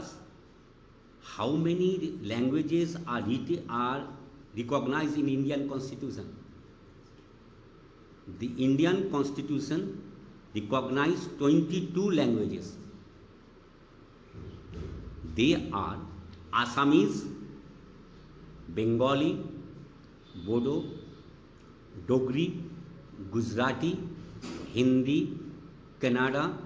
How many languages are recognized in Indian Constitution? The Indian Constitution recognizes 22 languages. They are Assamese, Bengali, Bodo, Dogri, Gujarati, Hindi, Kannada,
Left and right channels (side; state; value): both; identical; correlation 1.00